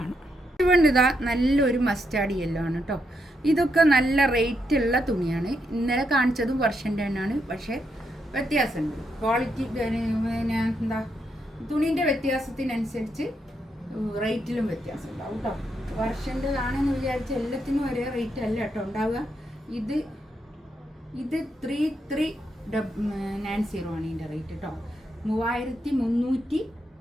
ഇതുകൊണ്ട് ഇതാ നല്ലൊരു മസ്റ്റാർഡ് യെല്ലോ ആണ് കേട്ടോ. ഇതൊക്കെ നല്ല റേറ്റുള്ള തുണിയാണ്. ഇന്നലെ കാണിച്ചതും വർഷൻ്റെ തന്നെയാണ്, പക്ഷേ വ്യത്യാസമുണ്ട്. ക്വാളിറ്റി പിന്നെ എന്താ തുണീൻ്റെ വ്യത്യാസത്തിനനുസരിച്ച് റേറ്റിലും വ്യത്യാസം ഉണ്ടാവും കേട്ടോ. വർഷൻ്റെതാണെന്ന് വിചാരിച്ച് എല്ലാത്തിനും ഒരേ റേറ്റ് അല്ല കേട്ടോ ഉണ്ടാവുക. ഇത് 3390 ആണ് ഇതിൻ്റെ റേറ്റ് കേട്ടോ. 3390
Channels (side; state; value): both; normal; correlation 0.80